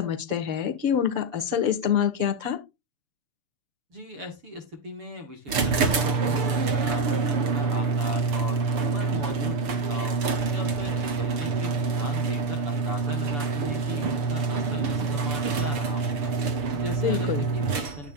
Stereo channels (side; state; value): left; late; 6.9 ms